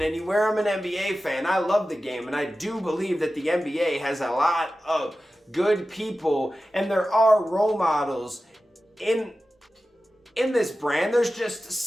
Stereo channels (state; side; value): normal; both; correlation 0.94